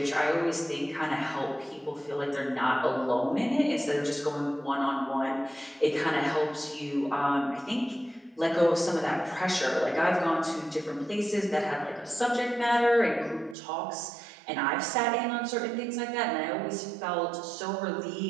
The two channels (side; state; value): left; drops out; at 13.6 s